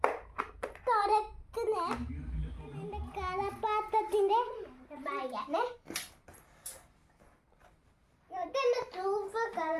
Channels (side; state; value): both; identical; correlation 1.00